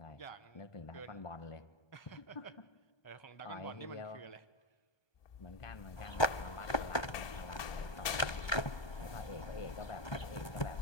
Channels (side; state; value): right; late; 1.2 ms